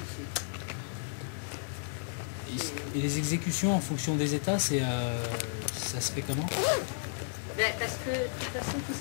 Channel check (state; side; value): silent; right; digital silence